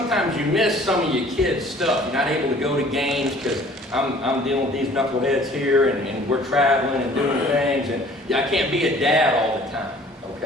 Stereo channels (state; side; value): normal; both; correlation 0.52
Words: you miss some of your kids' stuff. You're not able to go to games because I'm dealing with these knuckleheads here, and we're traveling and doing things, and I can't be a dad all the time,